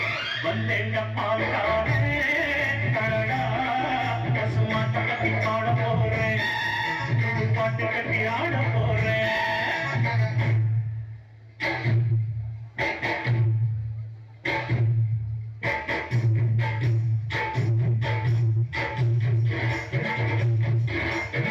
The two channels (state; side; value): identical; both; correlation 1.00